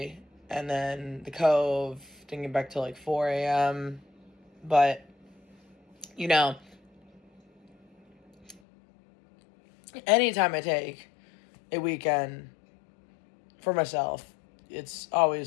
and then the Cove, didn't get back till like 4 a.m. But, you know, anytime I take a weekend for myself, it's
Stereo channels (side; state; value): right; drops out; at 8.6 s